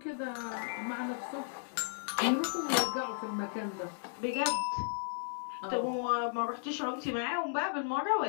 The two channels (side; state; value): right; silent; 55 dB below the other